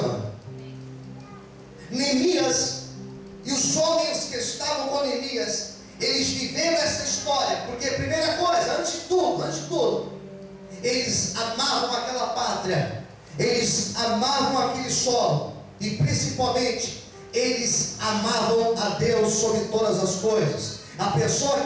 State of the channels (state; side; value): identical; both; correlation 1.00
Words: Neemias e os homens que estavam com Neemias, eles viveram essa história, porque primeira coisa, antes de tudo, eles amavam aquela pátria, eles amavam aquele solo, e principalmente, eles amavam a Deus sobre todas as coisas. A pessoa